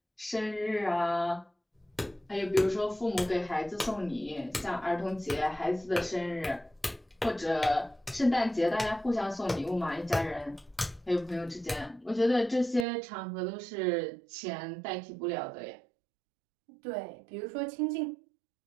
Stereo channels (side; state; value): left; drops out; at 12.9 s